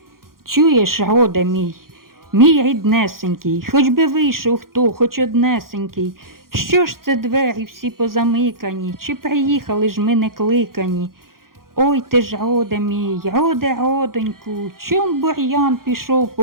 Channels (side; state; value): left; late; 0.92 ms